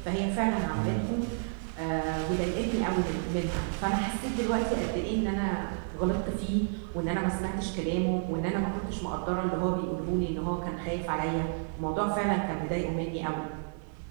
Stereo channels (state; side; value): silent; left; digital silence